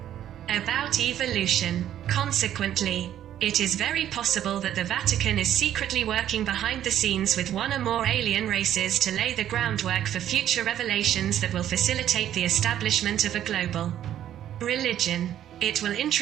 about evolution. Consequently, it is very possible that the Vatican is secretly working behind the scenes with one or more alien races to lay the groundwork for future revelations that will facilitate the establishment of a global religion. It will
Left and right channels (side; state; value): left; quieter; 11.2 dB